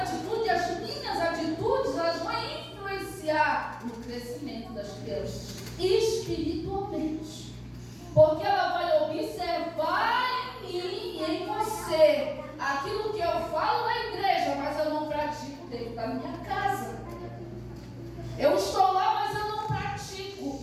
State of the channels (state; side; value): identical; both; correlation 1.00